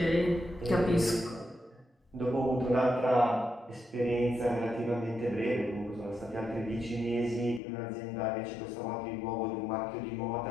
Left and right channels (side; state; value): right; drops out; at 7.6 s